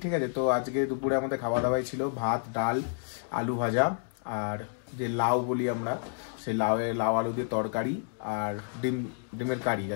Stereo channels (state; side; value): silent; right; digital silence